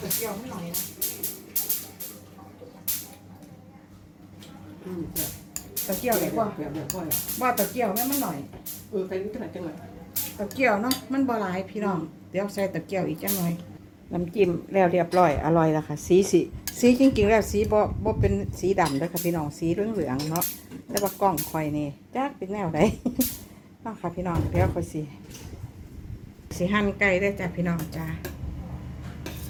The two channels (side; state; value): both; identical; correlation 1.00